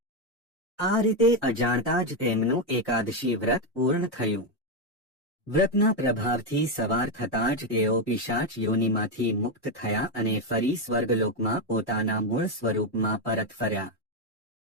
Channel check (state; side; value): normal; both; correlation 0.06